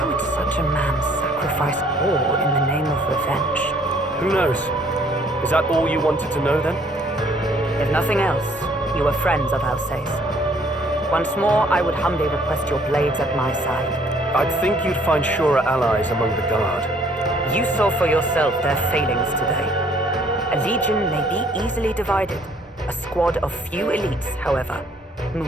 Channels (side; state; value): both; normal; correlation 0.61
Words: would such a man sacrifice all in the name of revenge? Who knows? Is that all you wanted to know then? If nothing else, you were friends of Alsace. Once more, I would humbly request your blades at my side. I'd think you'd find surer allies among the guard. You saw for yourself their failings today. A legion may be easily divided. A squad of few elites, however,